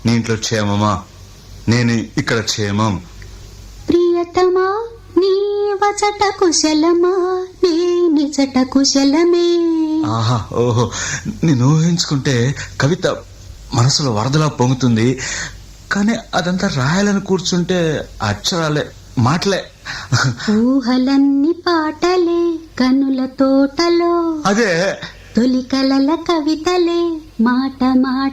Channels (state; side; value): identical; both; correlation 1.00